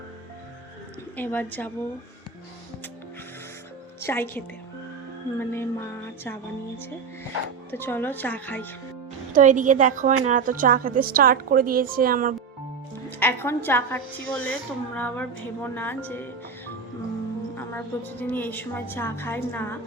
এবার যাব চাই খেতে, মানে মা চা বানিয়েছে, তো চলো চা খাই। তো এদিকে দেখো এনারা তো চা খেতে স্টার্ট করে দিয়েছে। আমার এখন চা খাচ্ছি বলে তোমরা আবার ভেবো না যে আমরা প্রতিদিনই এই সময় চা খাই না।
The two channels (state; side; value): quieter; left; 5.7 dB